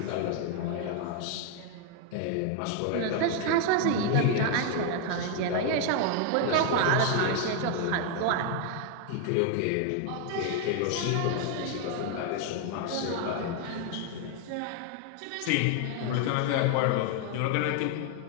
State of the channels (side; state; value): both; different; correlation 0.00